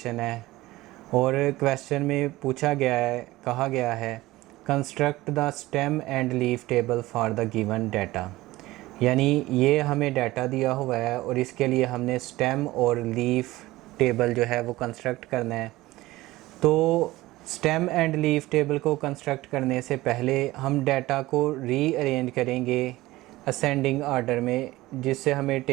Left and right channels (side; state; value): left; quieter; 18.2 dB